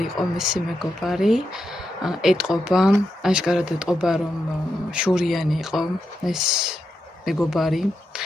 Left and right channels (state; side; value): normal; both; correlation 0.85